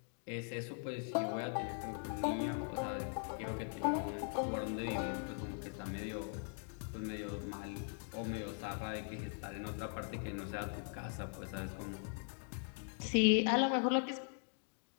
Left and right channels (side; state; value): right; silent; 51 dB below the other